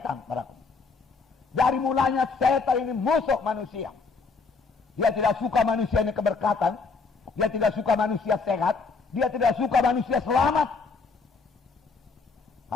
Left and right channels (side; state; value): right; quieter; 4.6 dB